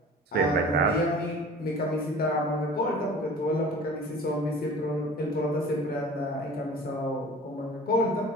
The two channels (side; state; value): both; normal; correlation 0.43